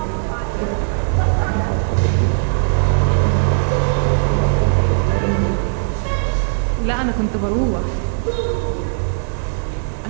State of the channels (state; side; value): silent; left; 67 dB below the other